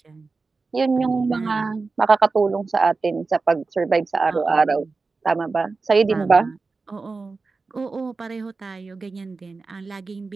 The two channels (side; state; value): left; quieter; 4.0 dB